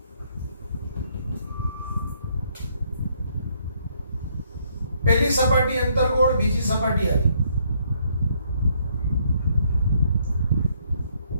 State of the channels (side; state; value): both; inverted; correlation -0.69